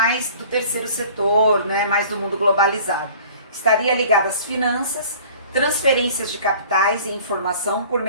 do terceiro setor, né? Mais do mundo globalizado. Estaria ligada às finanças, transferências de capitais e informação por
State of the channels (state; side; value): inverted; both; correlation -0.47